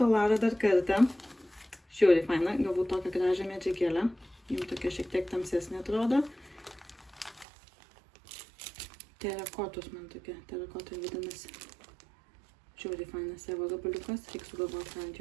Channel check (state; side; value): drops out; left; at 7.5 s